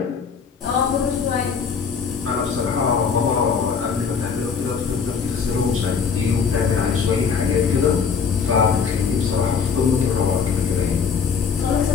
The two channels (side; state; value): right; quieter; 6.0 dB